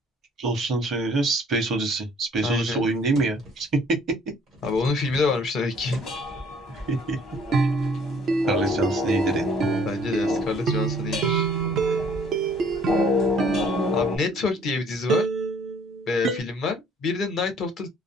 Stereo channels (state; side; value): normal; both; correlation 0.58